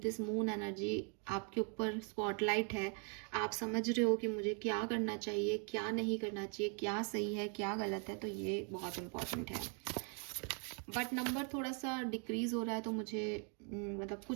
मून एनर्जी। आपके ऊपर स्पॉटलाइट है, आप समझ रहे हो कि मुझे क्या करना चाहिए, क्या नहीं करना चाहिए, क्या सही है, क्या गलत है। तो ये बहुत इम्पॉर्टेंट है। बट नंबर थोड़ा सा डिक्रीज हो रहा है, तो मुझे मतलब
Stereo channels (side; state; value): left; quieter; 39.3 dB